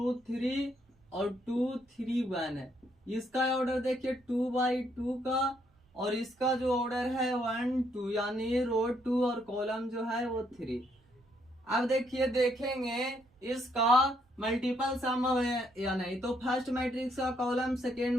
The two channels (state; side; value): normal; both; correlation 0.72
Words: 3 और 2 3 1 है। इसका ऑर्डर देखिए 2/2 का, और इसका जो ऑर्डर है 1 2, यानी रो 2 और कॉलम जो है वो 3। अब देखिए देखेंगे इसका मल्टीपल सम है या नहीं। तो फर्स्ट मैट्रिक्स का कॉलम सेकेंड